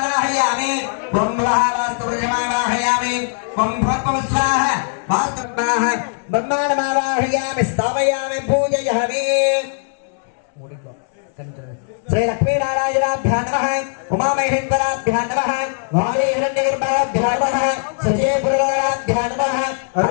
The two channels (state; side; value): silent; right; digital silence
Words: ब्रह्मः वास्तुपुरुषमावाहयामि ब्रह्मोत्पवस्वाः वास्तुवाः ब्रह्माण्डमावाहयामि स्थापयामि पूजयामि श्री लक्ष्मी नारायणाभ्यां नमः उमामहेश्वराभ्यां नमः वायुहिरण्यगर्भाभ्यां नमः सजयपुरराभ्यां नमः